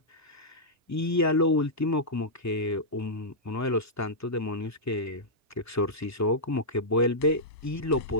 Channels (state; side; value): normal; both; correlation -0.10